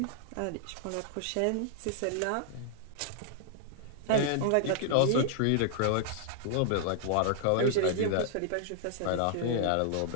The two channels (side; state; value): both; different; correlation 0.00